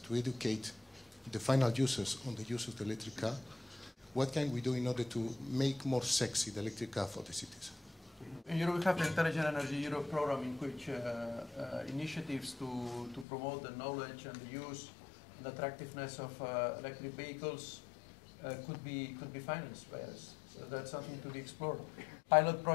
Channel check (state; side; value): drops out; right; at 13.2 s